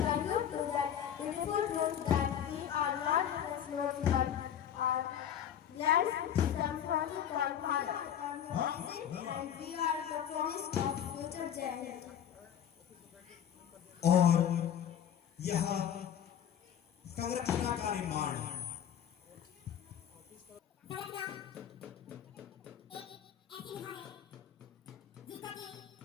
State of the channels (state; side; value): quieter; right; 9.5 dB